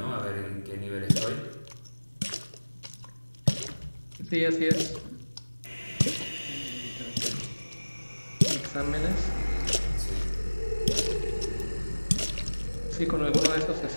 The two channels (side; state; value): both; inverted; correlation -1.00